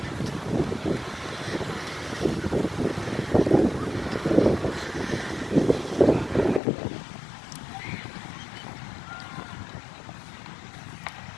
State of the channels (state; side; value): drops out; right; at 6.6 s